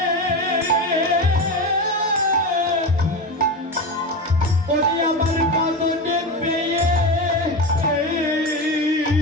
আমার বাদনে পেয়ে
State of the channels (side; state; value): both; normal; correlation 0.22